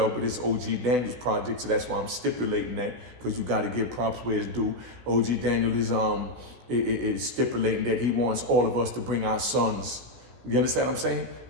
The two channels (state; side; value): late; left; 16 ms